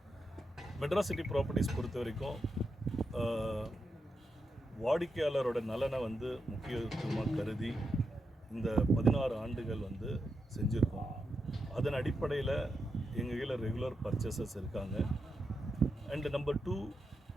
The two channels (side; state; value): both; normal; correlation 0.86